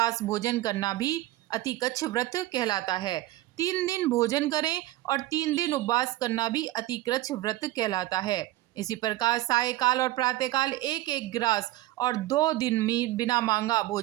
भोजन करना भी अतिकच्छ व्रत कहलाता है। 3 दिन भोजन करें और 3 दिन उपवास करना भी अतिकच्छ व्रत कहलाता है। इसी प्रकार सायकाल और प्रातःकाल 1-1 ग्रास और 2 दिन बिना मांगा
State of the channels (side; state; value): left; quieter; 16.6 dB